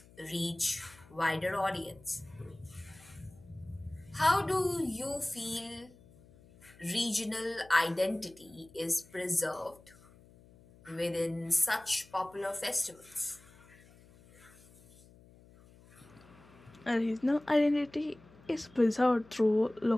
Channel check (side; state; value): left; noise; hum, 25 dB below the sound